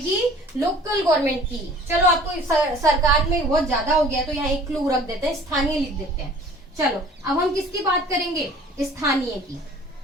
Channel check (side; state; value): both; normal; correlation 0.49